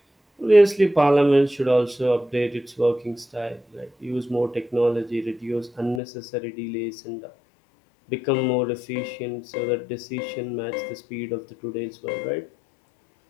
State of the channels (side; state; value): right; drops out; at 6.0 s